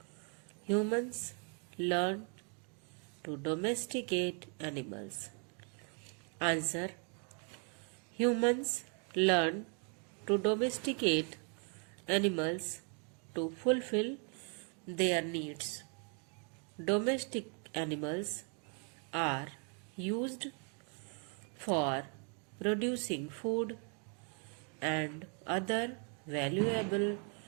humans learn to domesticate animals? Answer. Humans learn to domesticate animals to fulfill their needs. Domestic animals are used for producing food and other valuable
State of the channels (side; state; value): left; quieter; 39.3 dB